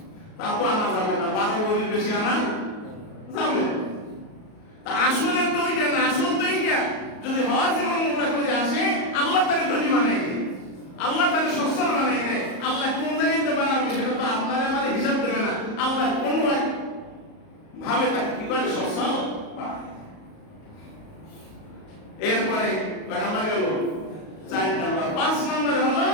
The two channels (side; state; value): right; late; 37 ms